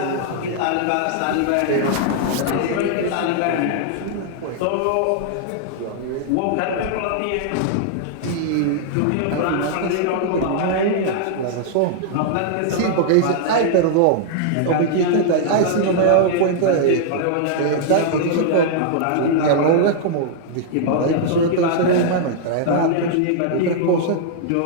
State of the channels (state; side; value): different; both; correlation -0.01